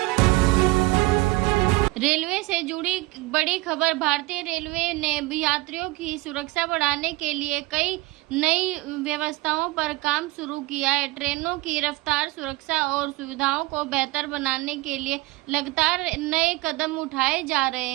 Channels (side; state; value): left; quieter; 20.6 dB